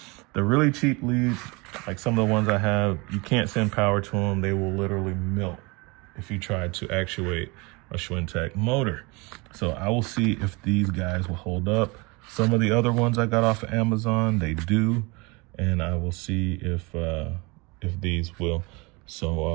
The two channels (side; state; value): left; quieter; 26.9 dB